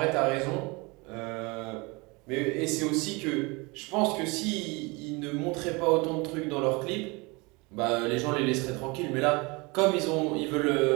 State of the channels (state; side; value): quieter; left; 26.7 dB